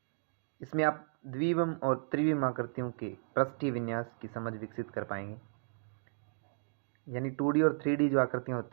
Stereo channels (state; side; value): silent; left; digital silence